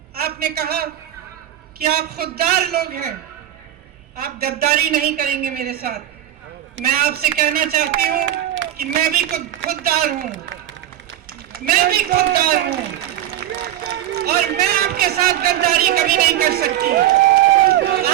आपने कहा कि आप खुददार लोग हैं, आप गद्दारी नहीं करेंगे मेरे साथ। मैं आपसे कहना चाहती हूं कि मैं भी खुददार हूं, मैं भी खुददार हूं। और मैं आपके साथ गद्दारी कभी नहीं कर सकती।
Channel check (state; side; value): quieter; left; 12.4 dB